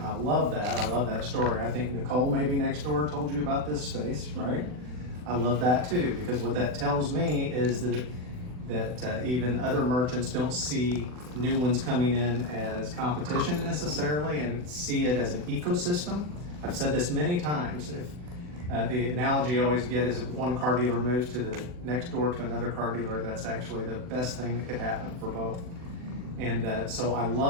I love that. I love that story. I think Nicole maybe next door told you about this space, right? I love that too, because what that tells me is that even other merchants don't see new ones coming in as competition necessarily and see it as an ecosystem. I've said this many times. If the analogy I always get is if one car dealer moves to the next door to another car dealer, that's actually the best thing that could happen for both. And so I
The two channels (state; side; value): late; left; 40 ms